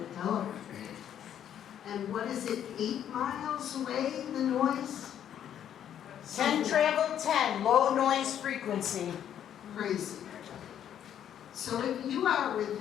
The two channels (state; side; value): quieter; right; 9.9 dB